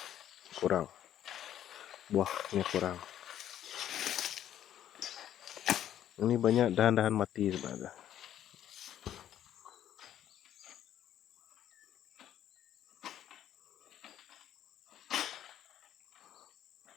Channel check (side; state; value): right; quieter; 11.1 dB